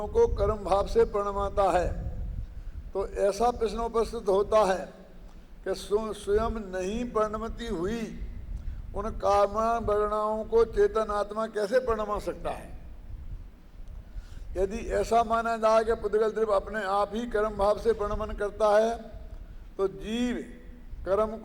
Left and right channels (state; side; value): identical; both; correlation 1.00